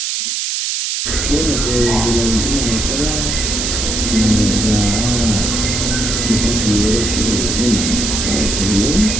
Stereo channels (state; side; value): noise; right; hiss, 1 dB below the sound